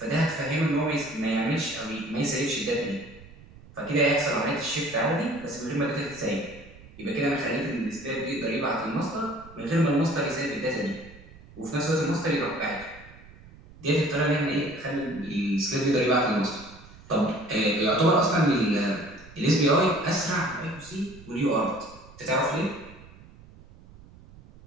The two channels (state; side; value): noise; right; rumble, 21 dB below the sound